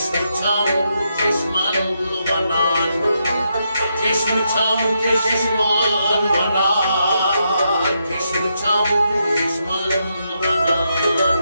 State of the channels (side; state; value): both; inverted; correlation -0.81